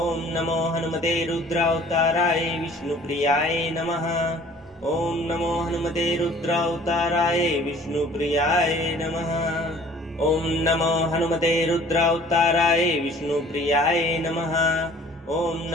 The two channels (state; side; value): normal; both; correlation 0.52